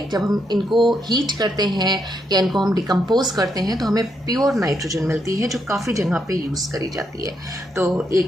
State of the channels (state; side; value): normal; both; correlation 0.79